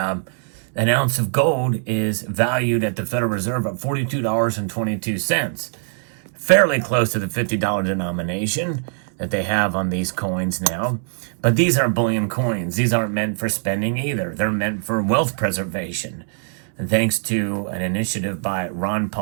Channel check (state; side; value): silent; left; digital silence